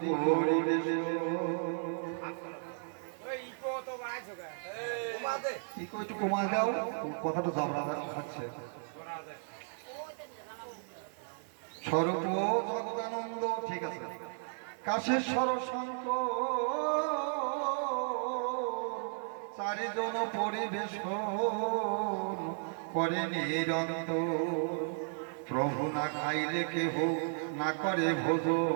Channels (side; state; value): left; silent; 55 dB below the other